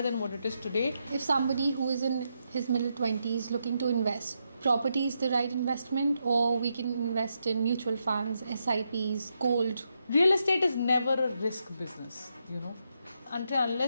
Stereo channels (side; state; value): both; inverted; correlation -0.82